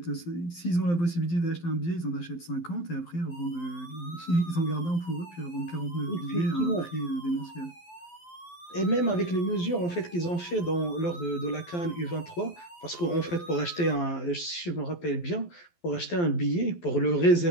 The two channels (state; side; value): late; right; 12 ms